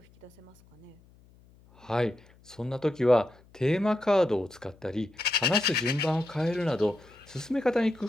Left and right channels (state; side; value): noise; left; hum, 28 dB below the sound